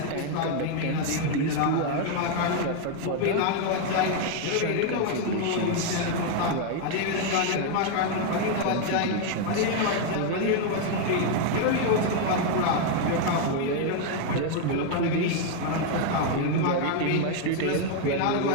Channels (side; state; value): both; different; correlation 0.00